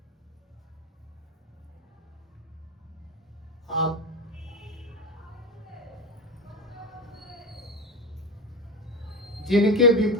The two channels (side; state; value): both; normal; correlation 0.21